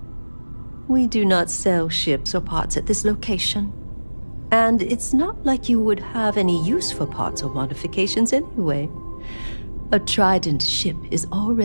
We do not sell ships or parts at this location. And it's not like you would have any use for parts or modifications anyway. A Trident ship is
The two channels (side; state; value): both; inverted; correlation -1.00